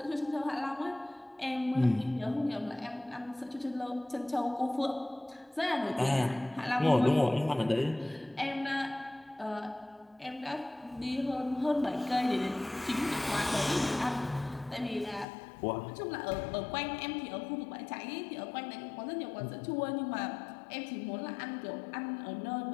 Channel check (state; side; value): drops out; right; at 15.2 s